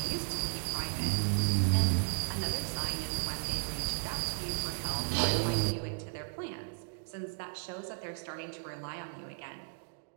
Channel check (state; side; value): silent; left; digital silence